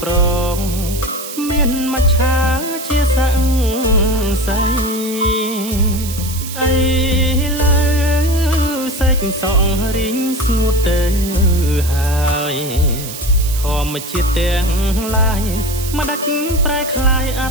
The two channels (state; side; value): noise; right; hiss, 10 dB below the sound